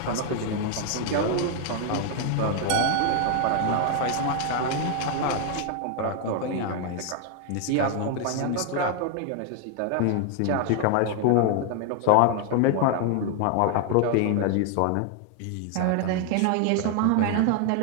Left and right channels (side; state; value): both; different; correlation 0.00